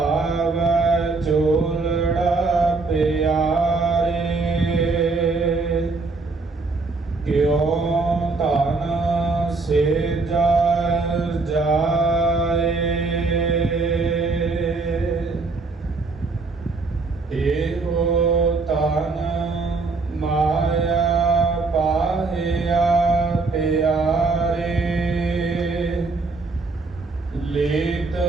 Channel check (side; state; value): left; quieter; 3.8 dB